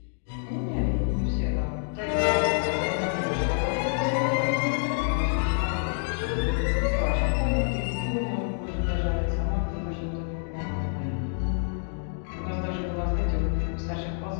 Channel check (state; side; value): silent; right; 60 dB below the other